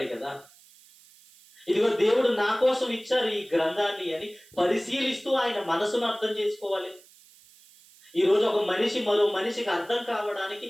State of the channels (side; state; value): right; noise; hiss, 26 dB below the sound